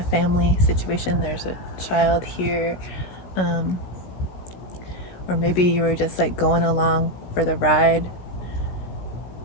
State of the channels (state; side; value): late; right; 16 ms